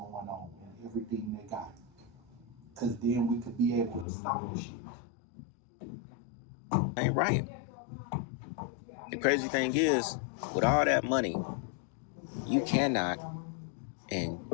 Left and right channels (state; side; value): drops out; right; at 4.0 s